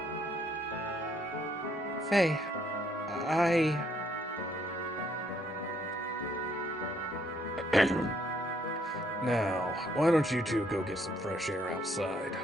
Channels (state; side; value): normal; both; correlation 0.69